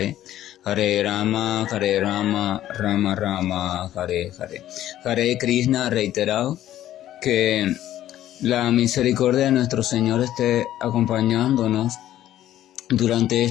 Hare Rama, Rama Rama, Hare Hare. Hare Krishna, reiterado, que la misericordia de nuestro Señor esté acompañándonos durante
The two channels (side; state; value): right; quieter; 12.8 dB